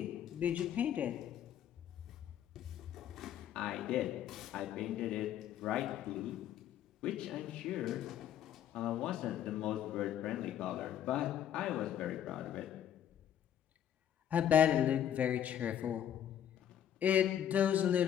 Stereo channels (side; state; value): right; quieter; 10.2 dB